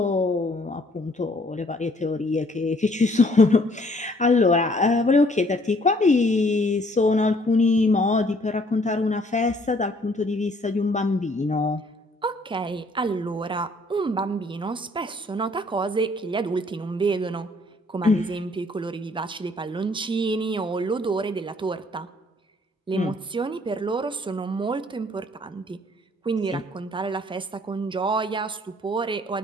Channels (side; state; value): both; normal; correlation 0.61